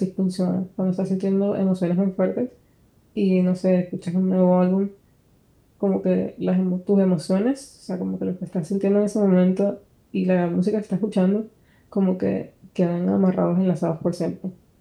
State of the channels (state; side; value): identical; both; correlation 1.00